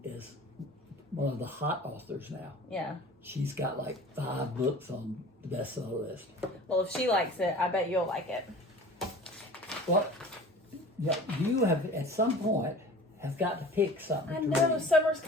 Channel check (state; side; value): normal; both; correlation 0.42